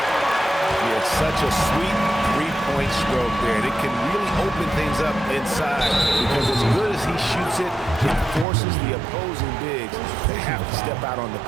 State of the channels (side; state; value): left; drops out; at 8.5 s